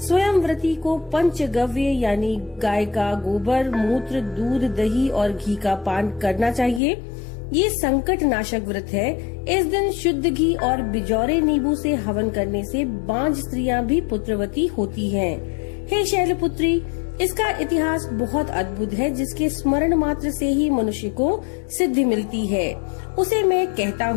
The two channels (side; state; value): right; drops out; at 6.8 s